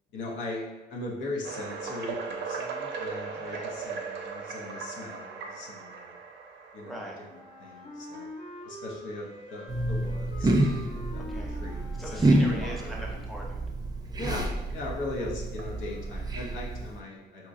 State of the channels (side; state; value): both; normal; correlation 0.73